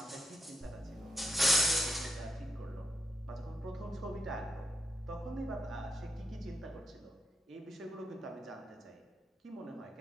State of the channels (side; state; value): both; normal; correlation 0.83